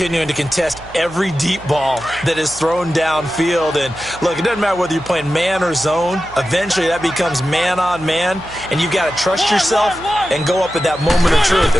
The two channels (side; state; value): right; noise; hum, 19 dB below the sound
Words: to contest every deep ball that is thrown downfield. And, look, it doesn't matter whether you're playing man or zone. Eventually, that becomes man-on-man. And you've got to trust yourself and go up at that moment of truth